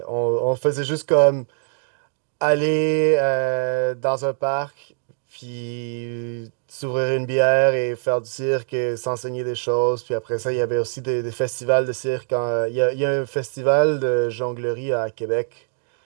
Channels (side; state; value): left; silent; digital silence